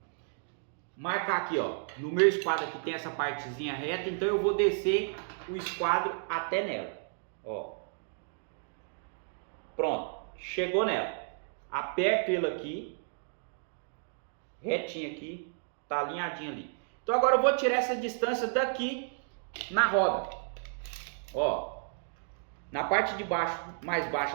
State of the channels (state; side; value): silent; left; digital silence